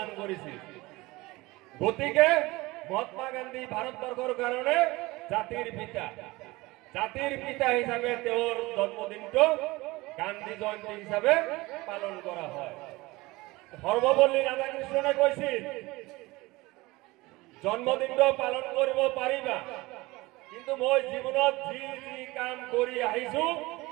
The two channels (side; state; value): left; quieter; 21.3 dB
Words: কৰিছিল গতিকে মহাত্মা গান্ধী ভাৰতবৰ্ষৰ কাৰণে জাতিৰ পিতা হিচাপে তেওঁৰ জন্মদিনটো গান্ধী জয়ন্তী হিচাপে পালন কৰা হয় সৰ্বপল্লী ৰাধাকৃষ্ণনে কৈছিল জন্মদিনটো পালন কৰিব পাৰিবা কিন্তু মই জীৱনত যি যি কাম কৰি আহিছো